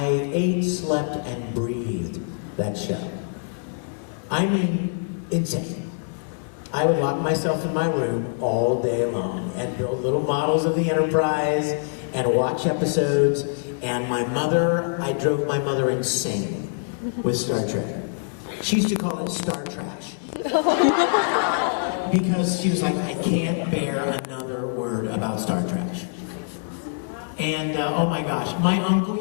ate, slept, and breathed that show. I mean, insane. I would lock myself in my room all day long and build little models of the Enterprise and watch episodes. And I drove my mother insane with Star Trek. She used to call it Star Trash. Because she was like, I can't bear another word about Star Trash. And oh my gosh, my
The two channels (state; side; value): silent; right; 62 dB below the other